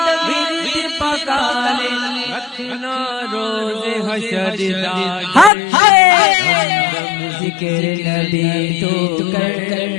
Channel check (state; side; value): drops out; right; at 5.5 s